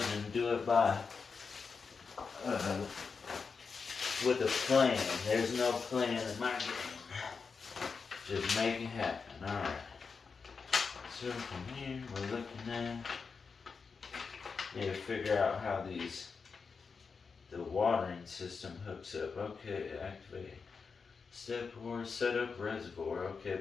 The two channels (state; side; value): quieter; right; 5.2 dB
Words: and do it by with a plan. There's no plan in my game. Just make it happen. Alright. So from here we're looking at, need to figure out how the watering system hooks up. Okay, activate. Step 4, set up reservoir. Okay,